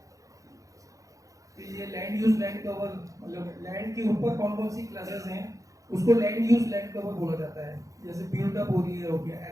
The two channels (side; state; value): left; late; 0.16 ms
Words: फिर ये लैंड यूज लैंड कवर, मतलब लैंड के ऊपर कौन कौन सी क्लासेस हैं उसको लैंड यूज लैंड कवर बोला जाता है। जैसे बिल्ड अप हो रही है हो गया,